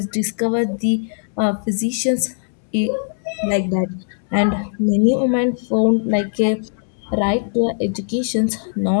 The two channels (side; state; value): right; silent; digital silence